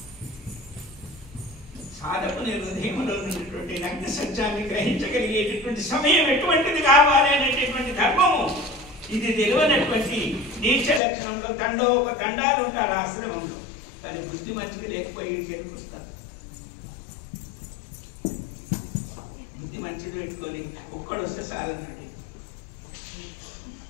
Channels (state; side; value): drops out; right; at 11.0 s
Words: సాధకుని హృదయంలో ఉన్నటువంటి నగ్న సత్యాన్ని గ్రహించగలిగేటటువంటి సమయం ఎటువంటిది కావాలి అనేటటువంటి ధర్మము ఇది తెలియనటువంటి నీచ లక్షణంలో తండాలు ఉంటారు ఆశ్రమంలో. కానీ బుద్ధి మంచిది లేకపోయి ఇంటికి వస్తారు. బుద్ధి మంచిది పెట్టుకొని ఒక్కడు వస్తే సాధనండి.